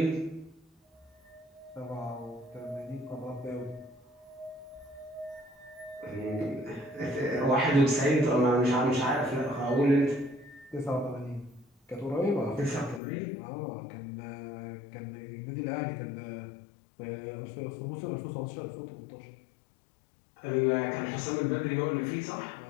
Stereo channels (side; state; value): right; drops out; at 13.0 s